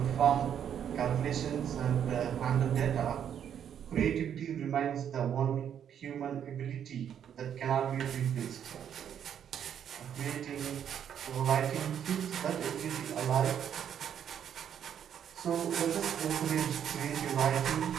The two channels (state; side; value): quieter; left; 9.0 dB